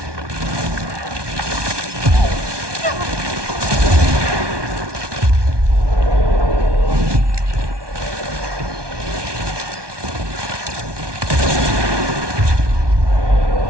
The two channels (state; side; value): late; left; 1.2 ms